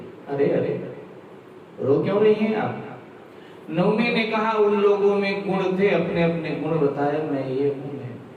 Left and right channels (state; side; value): identical; both; correlation 1.00